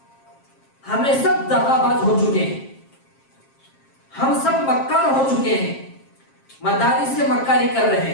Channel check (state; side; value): late; right; 7.5 ms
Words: ہمیں سب دغا باز ہو چکے ہیں، ہم سب مکار ہو چکے ہیں، مدارس سے مکاری کر رہے